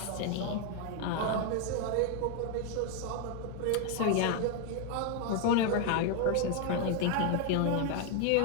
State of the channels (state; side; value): different; both; correlation 0.01